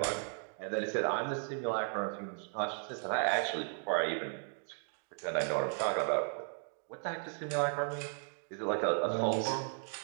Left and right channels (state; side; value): silent; left; 54 dB below the other